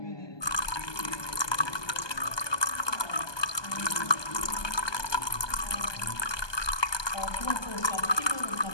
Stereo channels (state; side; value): late; right; 1.2 ms